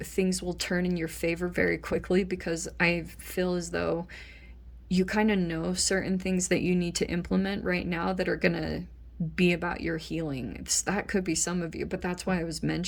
will turn in your favor very quickly, because I feel as though you kind of know certain things that you need to implement right now that are going to be about your healing. That could be some of you, but that's why I was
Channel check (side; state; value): both; identical; correlation 1.00